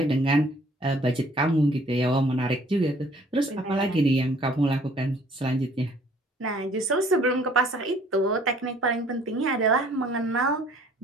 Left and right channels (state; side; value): normal; both; correlation 0.57